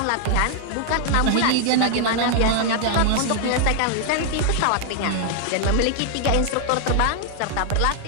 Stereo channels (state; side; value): different; both; correlation 0.00